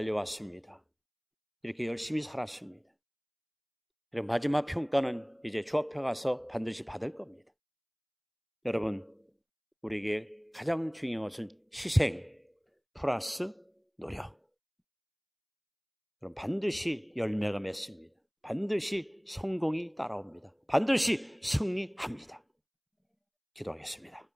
이렇게 열심히 살았습니다. 그리고 마지막 평가는 이제 주 앞에 가서 반드시 받을 겁니다. 여러분, 우리에게 가장 중요한 것은 희생 플러스 노력. 그럼 반드시 열매가 맺습니다. 반드시 성공이 따라옵니다. 반드시 승리합니다. 기도하겠습니다.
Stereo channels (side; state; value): both; identical; correlation 1.00